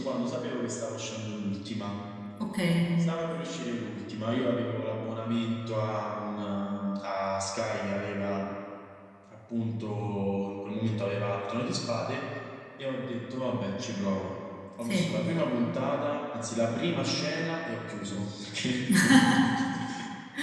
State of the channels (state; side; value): identical; both; correlation 1.00